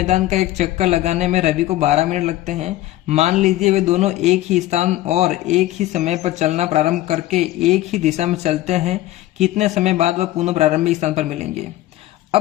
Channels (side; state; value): right; quieter; 15.4 dB